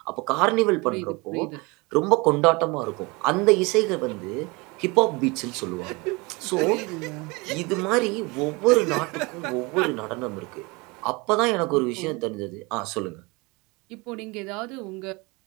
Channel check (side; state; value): left; quieter; 26.3 dB